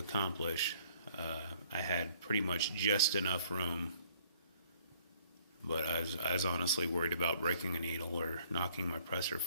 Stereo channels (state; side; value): inverted; both; correlation -0.60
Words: I had pretty much just enough room, but I was honestly worried about breaking a needle or knocking my presser